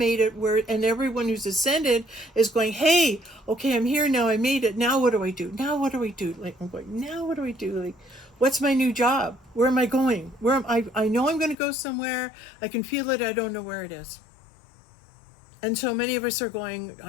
it, and everyone who's ascended is going, hey, okay, I'm here now. I made it. Now what do I do? Now what do I do? Like, I'm going, now what do I do? Like, what's my new job? Where am I going? I know I'm going to go somewhere. I can feel it. I don't know where it is. And so many of us are going,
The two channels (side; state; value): right; drops out; at 11.6 s